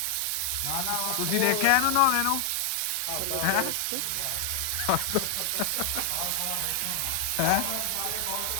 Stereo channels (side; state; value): both; different; correlation 0.00